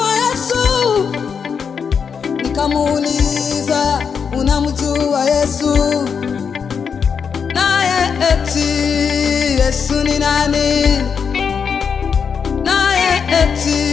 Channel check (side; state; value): right; quieter; 6.4 dB